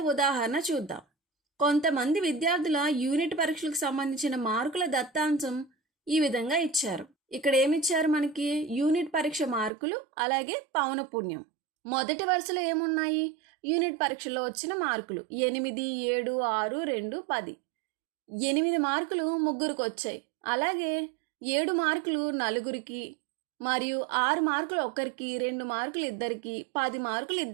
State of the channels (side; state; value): left; drops out; at 9.7 s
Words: ఉదాహరణ చూద్దాం. కొంతమంది విద్యార్థుల యూనిట్ పరీక్షలకు సంబంధించిన మార్కుల దత్తాంశం ఈ విధంగా ఇచ్చారు. ఇక్కడ ఏమిచ్చారు? మనకి యూనిట్ పరీక్ష మార్కులు అలాగే పౌనపున్యం. మొదటి వరుసలో ఏమున్నాయి? యూనిట్ పరీక్షలో వచ్చిన మార్కులు 8, 7, 6, 2, 10. 8 మార్కులు ముగ్గురికి వచ్చాయి. అలాగే 7 మార్కులు నలుగురికి మరియు 6 మార్కులు ఒకరికి, 2 మార్కులు ఇద్దరికి, 10 మార్కులు